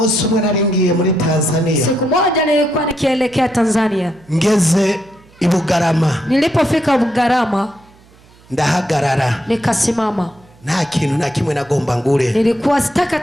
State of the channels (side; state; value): right; noise; hum, 28 dB below the sound